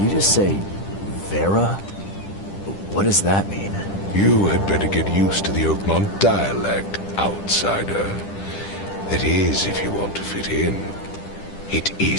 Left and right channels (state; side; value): late; right; 10 ms